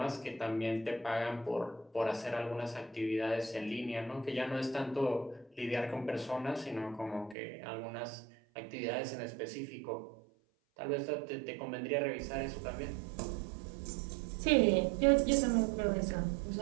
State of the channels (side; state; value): left; drops out; at 7.4 s